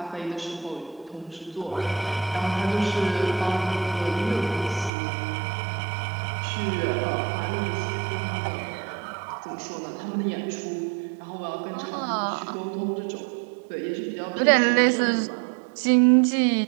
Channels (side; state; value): left; drops out; at 4.9 s